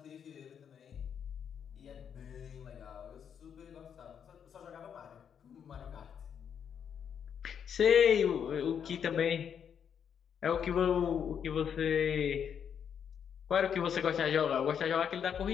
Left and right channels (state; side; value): quieter; right; 7.9 dB